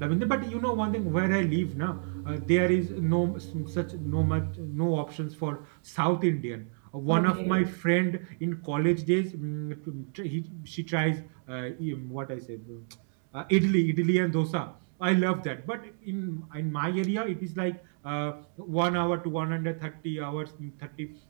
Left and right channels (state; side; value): silent; left; 58 dB below the other